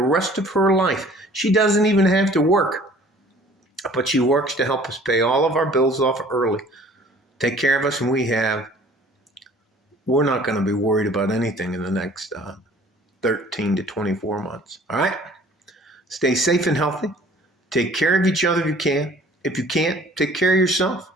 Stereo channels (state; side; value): normal; both; correlation 0.52